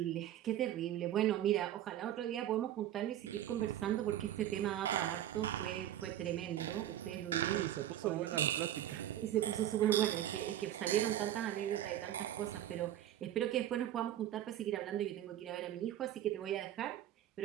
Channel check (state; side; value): quieter; left; 11.9 dB